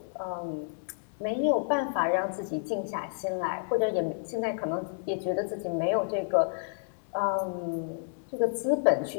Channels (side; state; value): right; silent; digital silence